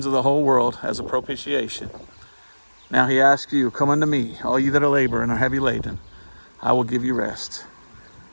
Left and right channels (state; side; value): inverted; both; correlation -1.00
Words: of the whole world as a propitiation. Now he asks you, come unto me, all you that are labor and are heavy laden. I will give you rest.